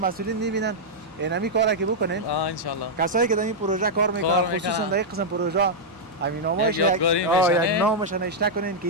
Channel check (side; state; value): both; normal; correlation -0.05